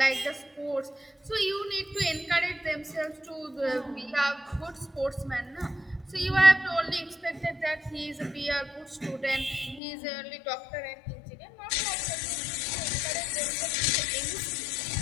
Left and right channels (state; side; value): drops out; right; at 9.8 s